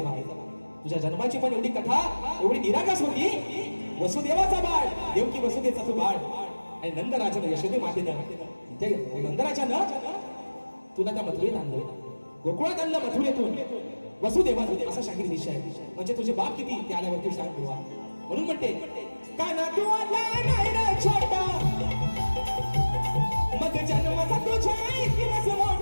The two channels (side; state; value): both; inverted; correlation -1.00